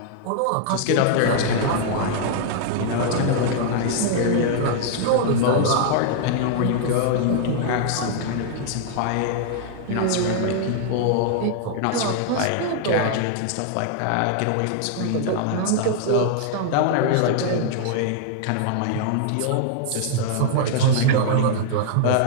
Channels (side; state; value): both; different; correlation -0.01